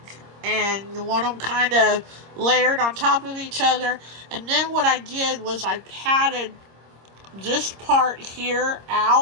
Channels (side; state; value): left; late; 26 ms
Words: And you want them kind of layered on top of each other. And then what I did was I patted this part here